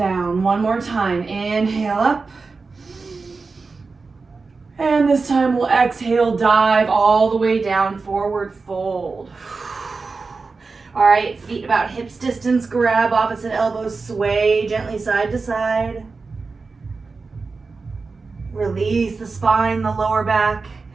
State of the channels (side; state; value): left; quieter; 4.2 dB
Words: One more time. Inhale up. And this time we'll exhale, dive all the way down, forward fold. All right, feet about hips distance, grab opposite elbows, sway gently side to side. Release the spine, the lower back.